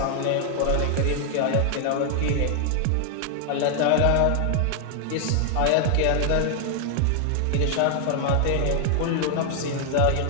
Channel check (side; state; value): both; different; correlation 0.00